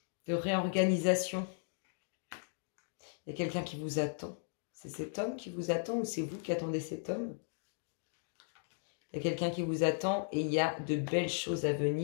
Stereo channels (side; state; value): right; silent; digital silence